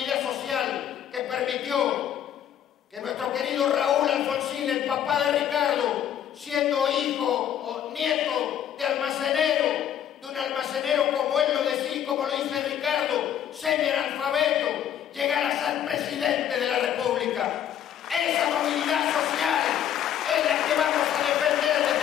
social que permitió que nuestro querido Raúl Alfonsín, el papá de Ricardo, siendo hijo o nieto de un almacenero como él lo decía y como lo dice Ricardo, semianalfabeto, llegara a ser presidente de la República. Esa movilidad social es la que vamos a defender desde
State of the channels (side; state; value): right; quieter; 10.1 dB